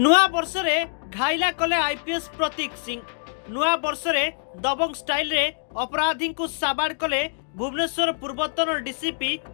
वर्ष रे घायला कले आईपीएस प्रतीक सिंह। नुआ वर्ष रे दबंग स्टाइल रे अपराधी को साबाड़ कले भुवनेश्वर पूर्वतन डीसीपी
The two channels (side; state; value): right; silent; digital silence